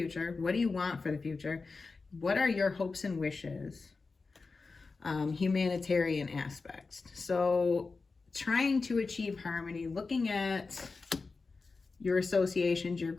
What do you want for the future? What are your hopes and wishes? Humanitarian aspects. So trying to achieve harmony, looking at your associations, your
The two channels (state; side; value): quieter; right; 4.2 dB